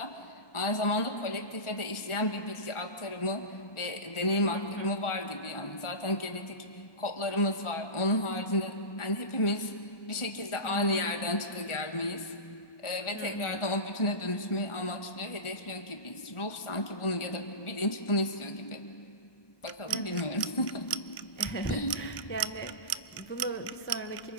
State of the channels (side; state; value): right; late; 1.4 ms